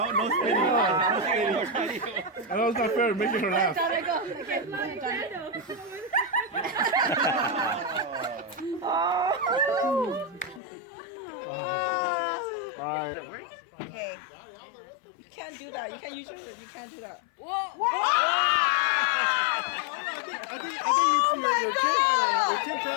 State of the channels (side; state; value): right; drops out; at 10.6 s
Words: spinning. No spinning. I know it's not fair making her laugh. Alright. Okay. You can't do that. You can't use your. You can't do that. I think your chin